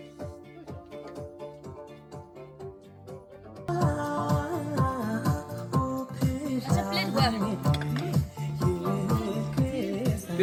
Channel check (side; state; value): both; identical; correlation 1.00